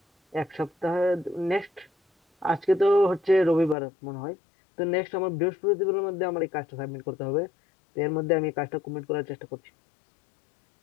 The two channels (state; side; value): drops out; right; at 3.8 s